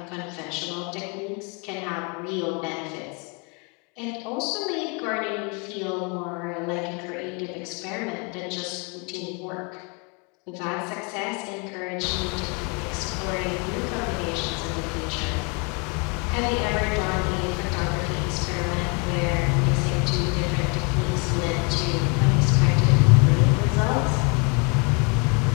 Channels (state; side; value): quieter; right; 33.0 dB